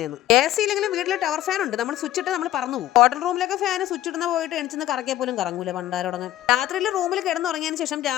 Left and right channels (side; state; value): right; quieter; 13.9 dB